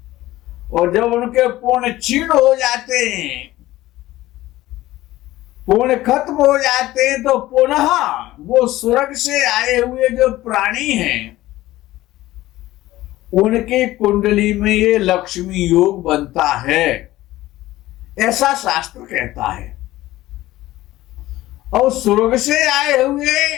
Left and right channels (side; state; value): right; quieter; 16.4 dB